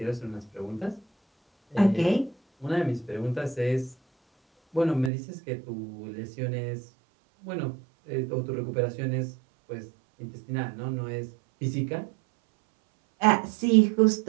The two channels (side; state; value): left; drops out; at 5.1 s